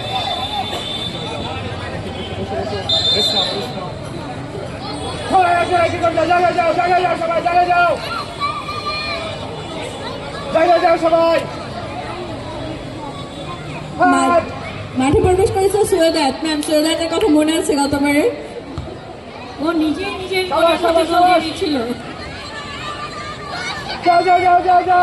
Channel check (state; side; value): identical; both; correlation 1.00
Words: সবাই মাঠে প্রবেশ করেছে সৈয়দাত ম্যাম। সৈয়দাতের কথা মনে আছে গতবারে? ও নিজেই নিজের ছিল। যাও যাও যাও যাও